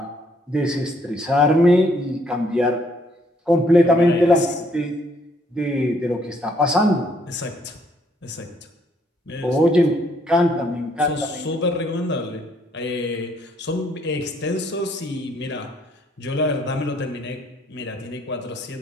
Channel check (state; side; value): normal; both; correlation 0.67